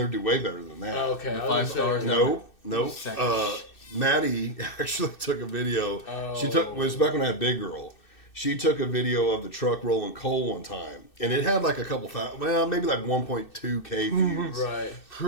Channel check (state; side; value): late; right; 2.6 ms